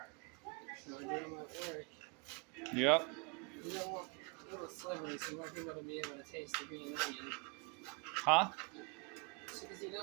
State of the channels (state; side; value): quieter; left; 32.7 dB